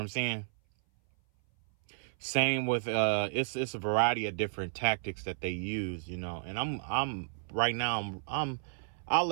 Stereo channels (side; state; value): left; silent; 56 dB below the other